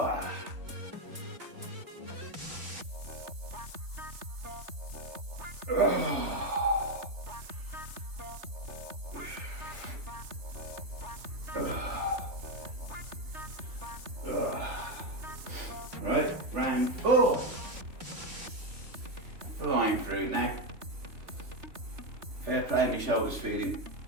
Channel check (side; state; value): left; late; 3.4 ms